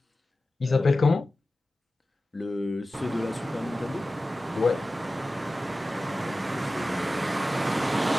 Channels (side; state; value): both; normal; correlation 0.95